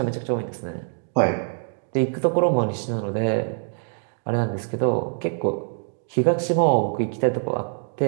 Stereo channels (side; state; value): left; silent; 62 dB below the other